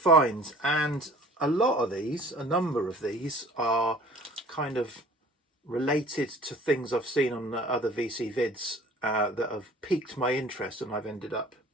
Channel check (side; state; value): both; normal; correlation 0.49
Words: and a number of these are kind of related to things I've seen on other VC vids that have piqued my interest, and I've ended up